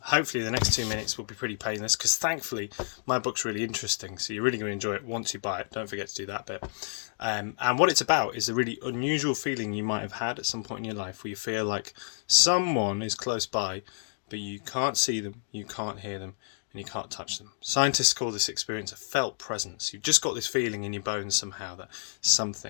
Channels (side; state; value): right; silent; digital silence